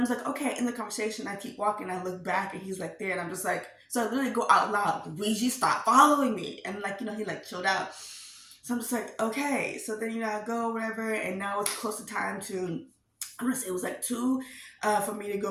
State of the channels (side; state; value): both; identical; correlation 1.00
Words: just like, okay, in the conversation, I keep walking, I look back, and he's like there, and I'm just like, so I literally go out loud, Luigi, stop following me. And like, he like chilled out. So I'm just like, okay. So then, I go, whatever, and now it's close to time to, I'm gonna say it was like 2 for me to